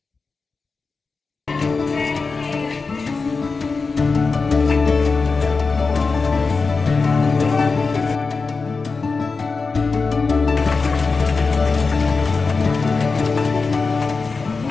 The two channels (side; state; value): right; quieter; 4.3 dB